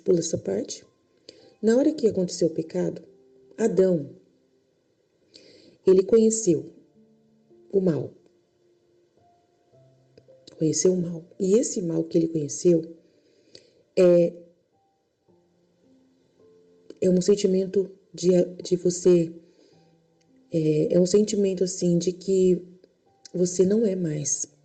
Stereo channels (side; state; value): both; identical; correlation 1.00